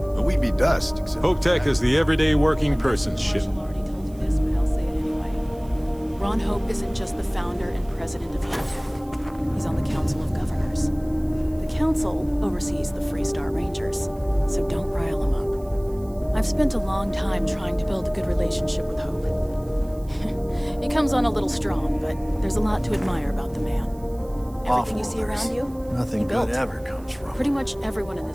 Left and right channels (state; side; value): noise; right; hiss, 26 dB below the sound